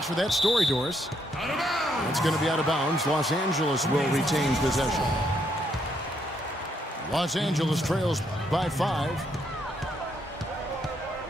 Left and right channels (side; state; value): both; normal; correlation 0.74